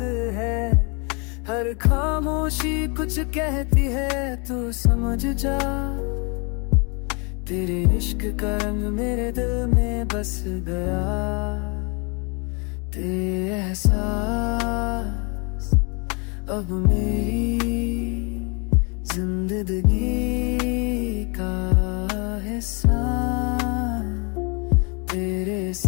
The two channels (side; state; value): right; quieter; 33.3 dB